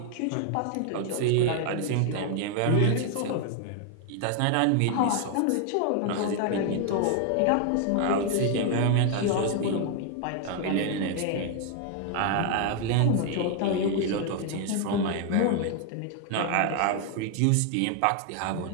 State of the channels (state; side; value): different; both; correlation 0.00